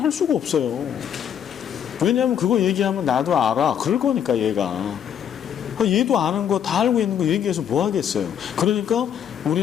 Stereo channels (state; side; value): quieter; right; 9.0 dB